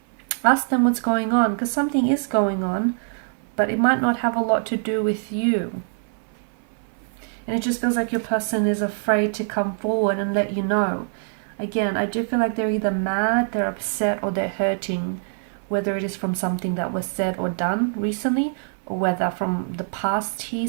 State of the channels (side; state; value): left; silent; 57 dB below the other